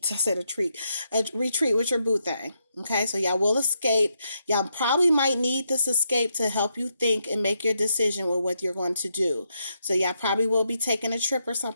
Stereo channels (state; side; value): inverted; both; correlation -0.80